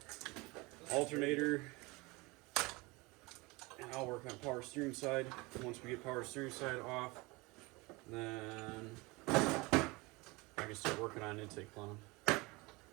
alternator, and I'll work on power steering side. Once we get power steering side off, then I can start working on intake plumbing.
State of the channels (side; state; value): left; quieter; 24.4 dB